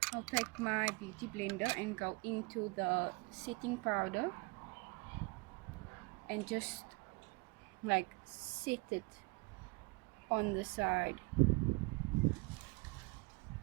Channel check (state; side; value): quieter; left; 26.9 dB